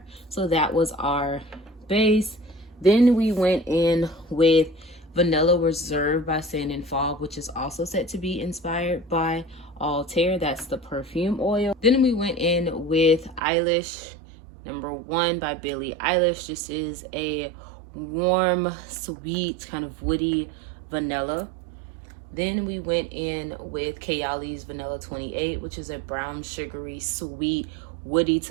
So that was our base. Then we went in with Vanilla Reserve by Sand and Fog, which is also said to be inspired by Altair. That's the perfume oil. Then we went in with Eilish Number 1 by Billie Eilish. This is a warm, sweet, kind of woody vanilla. Then we went in with Kayali's Vanilla 28, which is a brown, sugary, sweet, woody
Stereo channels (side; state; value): left; drops out; at 13.4 s